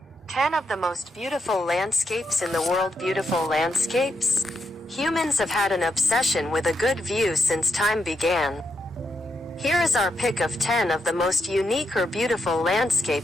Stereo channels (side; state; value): both; normal; correlation 0.83